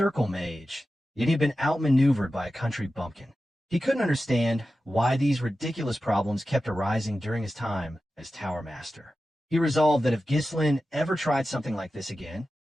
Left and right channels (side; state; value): both; normal; correlation 0.93